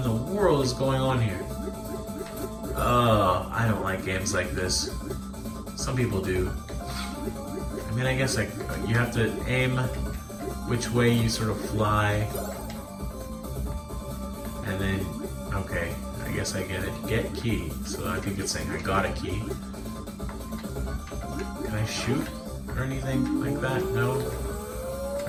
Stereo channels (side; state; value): both; identical; correlation 1.00